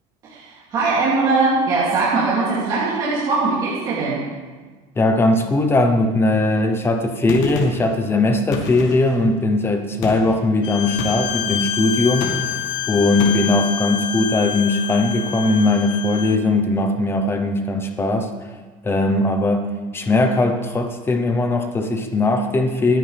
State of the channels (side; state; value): both; normal; correlation 0.51